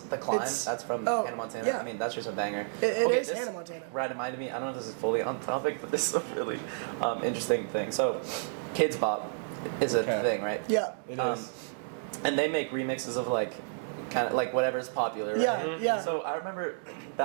Climb. It's- That's from oh, Hannah Montana. yeah. I mean, that's just a banger. It is this Hannah Montana. Reminded me. I don't know if this is fully on topic, but this is a really interesting thing. So, Kids Bop is a Okay. thing, right? Yeah. It Um, is. And they make remixes of like, kind of like whatever's popular. Right? Yeah, yeah. So I remember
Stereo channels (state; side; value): silent; left; digital silence